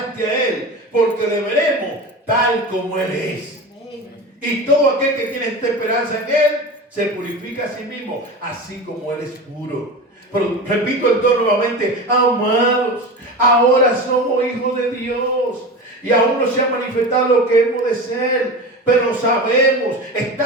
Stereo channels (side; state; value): both; normal; correlation 0.28